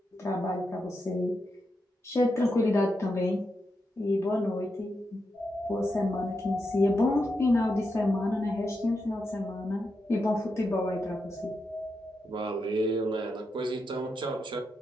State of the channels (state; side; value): normal; both; correlation 0.86